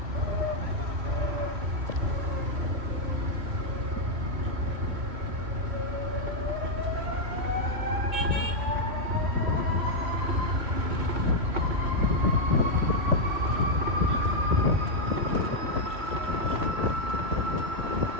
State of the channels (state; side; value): late; left; 2.2 ms